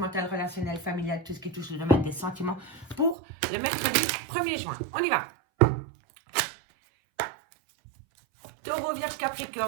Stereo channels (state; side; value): drops out; left; at 3.2 s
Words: relationnel, familial, tout ce qui touche le domaine des sentiments pour le mercredi 1er juin. On y va. Taureau, Vierge,